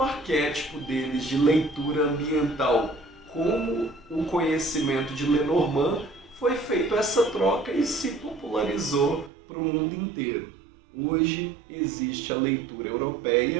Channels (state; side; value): drops out; left; at 9.3 s